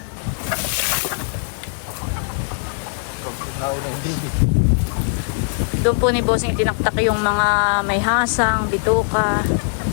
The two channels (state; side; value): silent; right; 65 dB below the other